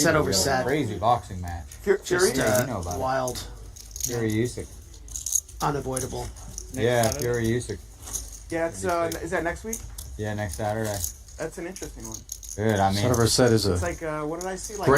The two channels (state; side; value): identical; both; correlation 1.00